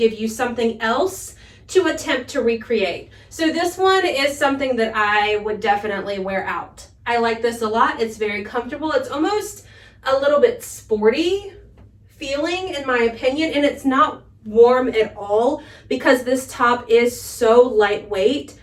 you something else to attempt to recreate. So this one is something that I would definitely wear out. I like this a lot. It's very comfortable. It's almost a little bit sporty feeling in my opinion, and it's not warm at all because this top is so lightweight.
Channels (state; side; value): identical; both; correlation 1.00